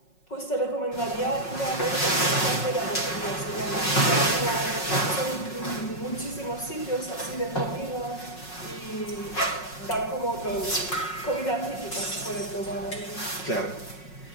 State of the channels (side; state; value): right; late; 5.4 ms